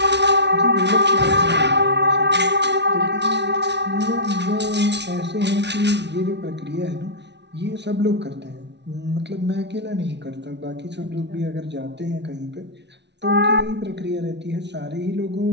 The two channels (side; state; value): left; late; 0.50 ms